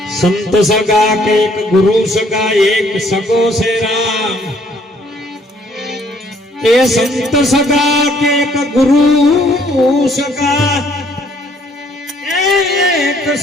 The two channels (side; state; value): both; normal; correlation 0.63